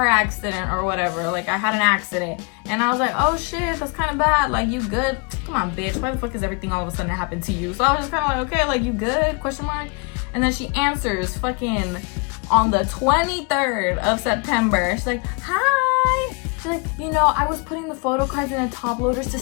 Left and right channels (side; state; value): right; quieter; 33.2 dB